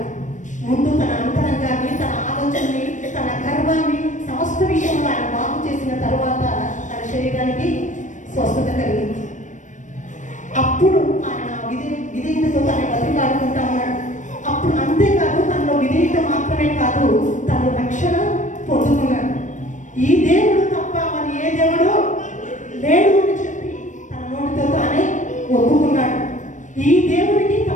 ముందు తన అంతరంగాన్ని, తన ఆలోచనని, తన గర్వాన్ని, సమస్త విషయంలో ఆయన బాగు చేసిన తర్వాత తన శరీరానికి స్వస్థత కలిగింది. అప్పుడు ఆయన విధేయతతో తన బతికాడుకుంటా ఉన్నాడు. అప్పుడు అంతేకాదు, తనలో విధేయత మాత్రమే కాదు, తను రక్షణ పొందుకున్నాడు. ఈ దేవుడు తప్ప మరి ఏ దేవుడు లేడు అని చెప్పి తన నోటితో తానే ఒప్పుకున్నాడు. ఈ దేవునికి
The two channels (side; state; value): right; late; 0.36 ms